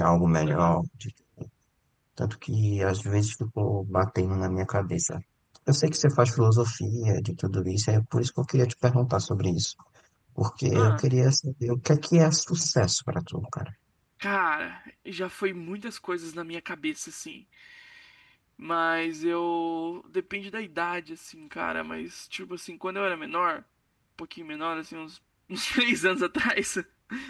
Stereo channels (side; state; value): both; identical; correlation 1.00